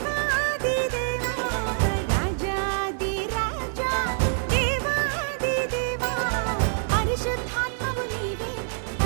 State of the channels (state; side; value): silent; left; digital silence